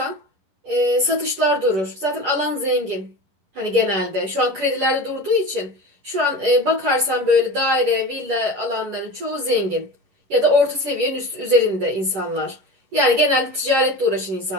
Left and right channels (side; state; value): left; late; 10 ms